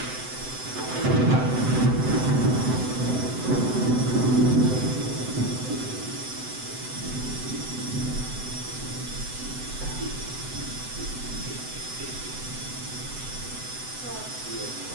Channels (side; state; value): left; late; 7.9 ms